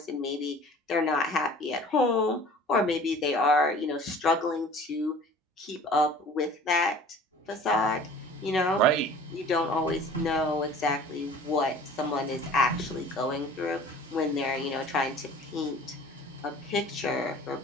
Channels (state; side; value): normal; both; correlation 0.46